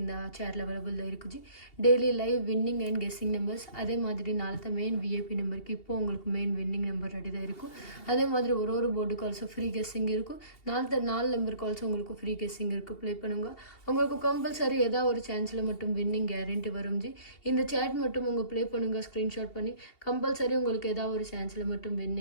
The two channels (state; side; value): late; right; 2.8 ms